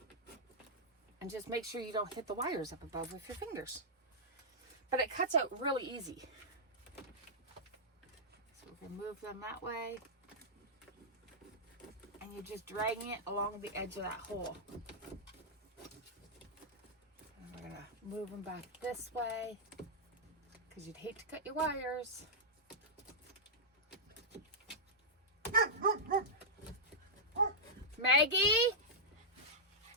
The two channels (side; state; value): both; normal; correlation -0.10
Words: And just make sure you don't hit the wires up above with your fingers. But it cuts out really easy. So we're going to move them that way. And you're just dragging it along the edge of that hole. And we're going to move them back this way, because you'd hate to cut your wires. Maggie?